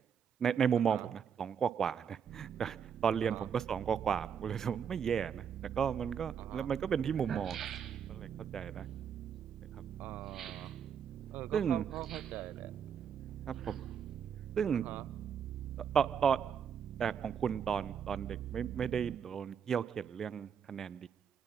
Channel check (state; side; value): quieter; left; 7.6 dB